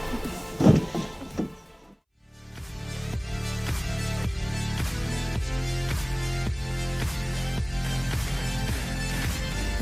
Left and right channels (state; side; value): identical; both; correlation 1.00